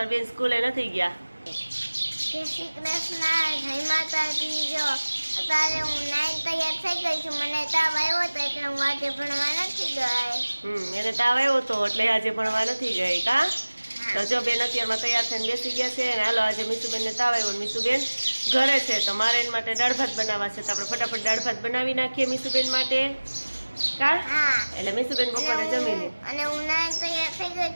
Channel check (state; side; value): inverted; both; correlation -1.00